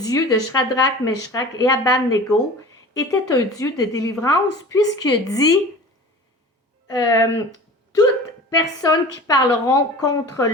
de Shadrach, Meshach et Abednego était un Dieu de délivrance, puisqu'il dit toutes personnes qui parleront contre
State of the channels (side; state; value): both; normal; correlation 0.39